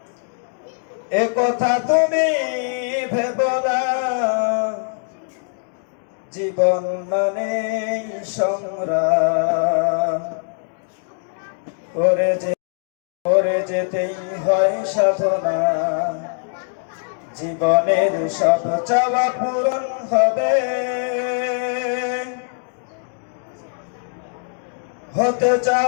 এ কথা তুমি ভেবো না। জীবন মানে সংগ্রাম, করে যেতেই হয় সাধনা। জীবনের সব চাওয়া পূরণ হবে, হতে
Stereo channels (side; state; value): right; silent; digital silence